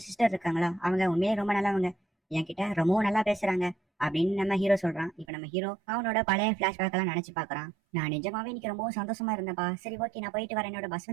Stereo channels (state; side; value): drops out; left; at 5.2 s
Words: சிஸ்டர் இருக்காங்களா, அவங்க உண்மையே ரொம்ப நல்லவங்க, என்கிட்ட ரொம்பவும் நல்லா பேசுறாங்க அப்படின்னு நம்ம ஹீரோ சொல்றான். இப்ப நம்ம ஹீரோ அவனோட பழைய பிளாஷ்பேக் எல்லாம் நினைச்சு பாக்குறான். நான் நிஜமாவே இன்னைக்கு ரொம்பவும் சந்தோஷமா இருந்தேன்ப்பா. சரி ஓகே நான் போயிட்டு வரேன், என்னோட பஸ்